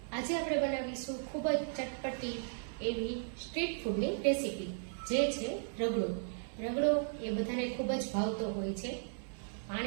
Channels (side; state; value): left; silent; 54 dB below the other